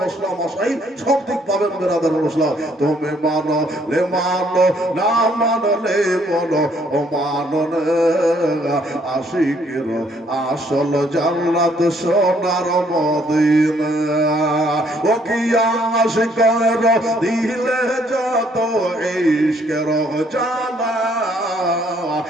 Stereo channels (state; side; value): normal; both; correlation 0.66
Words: মশলা মশাই সব দিক পাবেন বেরাদার মুসলিম। তুমি মানো লে মানো, না মানলে বলো ও মানো না। আশিকের আসল জান্নাত সোনার মদিনা। ও কি আশিকের দিলে যত ইশকের জালা,